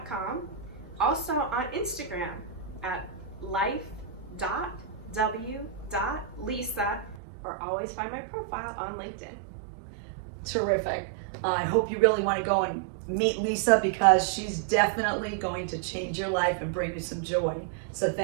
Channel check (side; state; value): left; drops out; at 7.2 s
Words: Also on Instagram at life.w.lisa, or always find my profile on LinkedIn. Terrific. I hope you really want to go and meet Lisa because she's definitely going to change your life and bring you some joy. So